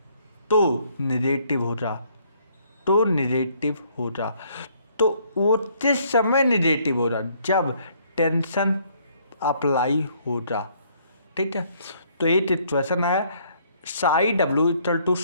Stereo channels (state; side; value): inverted; both; correlation -0.65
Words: तो निगेटिव हो जा तो निगेटिव हो जा। तो वो किस समय निगेटिव हो रहा? जब टेंशन अप्लाई हो जा। ठीक है। तो ये इक्वेशन है psi W equal to